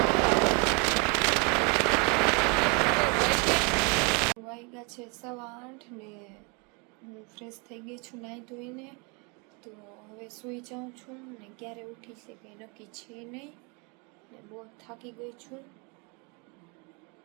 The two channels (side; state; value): left; quieter; 30.9 dB